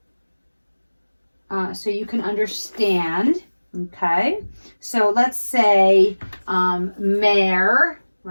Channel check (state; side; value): inverted; both; correlation -1.00